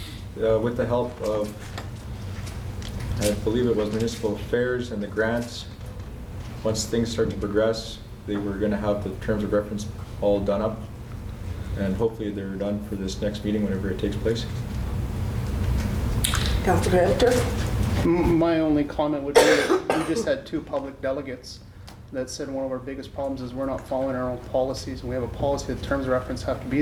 with the help of, I believe it was municipal affairs and the grants, once things start to progress, they were going to have the terms of reference all done up, and hopefully they're done for this next meeting whenever it takes place. Councillor Hampton? My only comment would be that we just had 2 public delegates that said one of our biggest problems is we're not following our own policies. We have a policy that terms of reference have to be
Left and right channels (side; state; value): both; identical; correlation 1.00